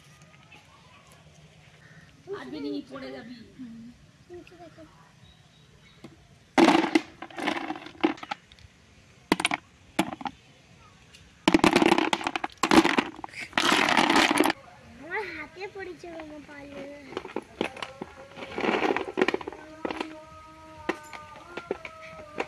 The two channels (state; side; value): identical; both; correlation 1.00